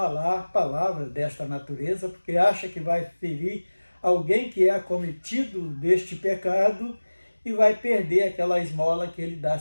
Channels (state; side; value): inverted; both; correlation -1.00